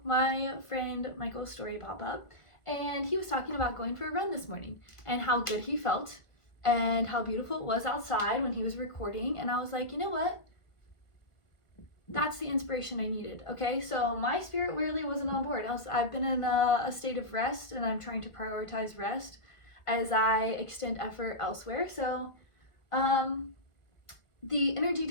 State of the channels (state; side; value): late; right; 1.5 ms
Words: my friend Michael's story pop up, and he was talking about going for a run this morning and how good he felt and how beautiful it was outside when he was recording. And I was like, you know what? That's the inspiration I needed. Okay, so my spirit really wasn't on board. I've been in a state of rest, and I'm trying to prioritize rest as I extend effort elsewhere. So the energy